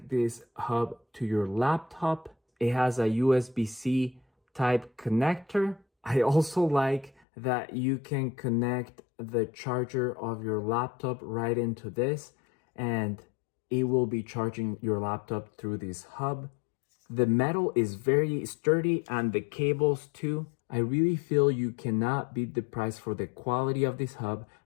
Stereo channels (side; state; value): right; drops out; at 7.1 s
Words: this hub to your laptop. It has a USB-C type connector. I also like that you can connect the charger of your laptop right into this, and it will be charging your laptop through this hub. The metal is very sturdy and the cables too. I really feel you cannot beat the price for the quality of this hub